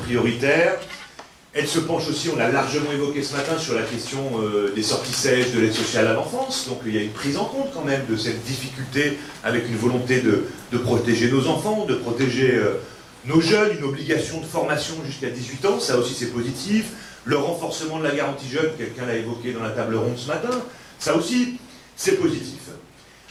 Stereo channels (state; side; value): identical; both; correlation 1.00